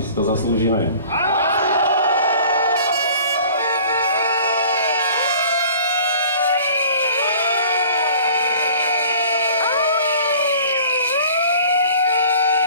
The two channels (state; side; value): inverted; both; correlation -0.48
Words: si to zaslúžime.